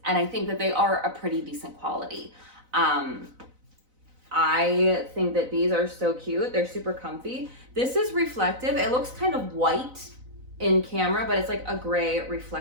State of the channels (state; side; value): late; left; 4.0 ms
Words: And I think that they are a pretty decent quality. I think that these are so cute. They're super comfy. This is reflective. It looks kind of white in camera, but it's like a gray